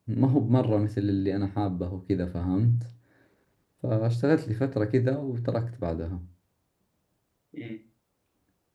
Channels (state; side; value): identical; both; correlation 1.00